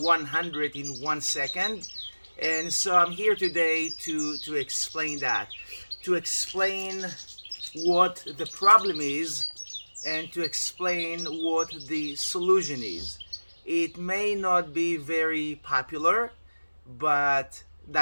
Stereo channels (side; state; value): both; inverted; correlation -1.00